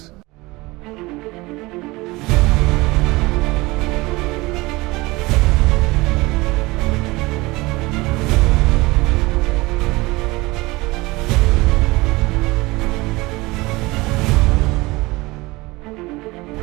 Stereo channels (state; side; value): quieter; left; 21.9 dB